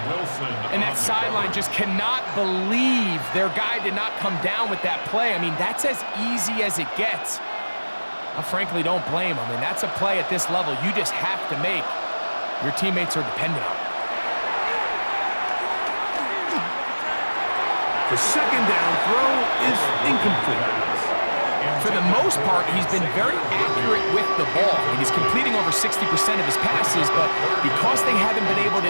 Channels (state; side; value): inverted; both; correlation -1.00